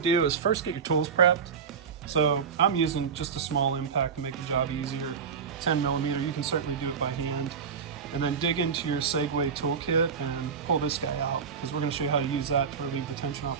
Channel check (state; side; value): quieter; left; 6.4 dB